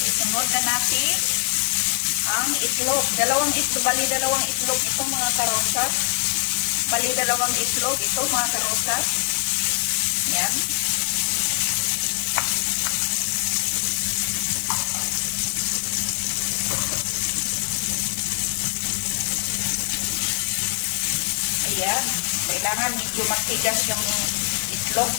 Isunod na natin ang itlog. Dalawang itlog ito mga karosas. Bali dalawang itlog ito mga karosas. Ayan. Ayan, kailangan medyo matigas yung itlog,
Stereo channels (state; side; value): silent; right; 63 dB below the other